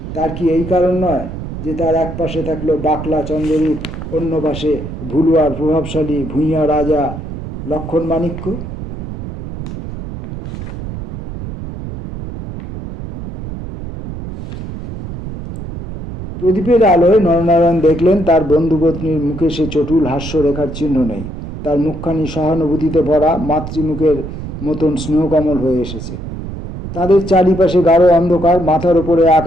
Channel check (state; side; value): noise; right; rumble, 9 dB below the sound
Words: তার কি এই কারণ নয় যে তার এক পাশে থাকলো বাকলা চন্দ্ররূপ, অন্য পাশে ভুলুয়ার প্রভাবশালী ভূঁইয়া রাজা লক্ষণ মাণিক্য? প্রদীপের আলোয় নরনারায়ণ দেখলেন তার বন্ধুপত্নীর মুখে সে চটুল হাস্যরেখার চিহ্ন নেই। তার মুখখানি সহানুভূতিতে ভরা, মাতৃমুখের মতন স্নেহকমল হয়ে এসেছে। তাদের চারিপাশে গাঢ় অন্ধকার, মাথার ওপরে